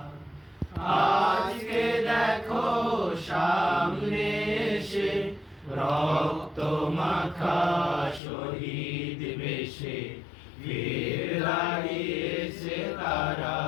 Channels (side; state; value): right; drops out; at 8.2 s